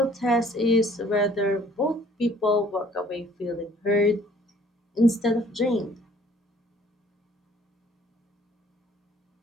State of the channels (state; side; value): normal; both; correlation 0.58